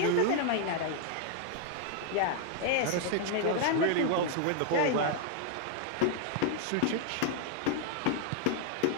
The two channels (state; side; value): different; both; correlation 0.00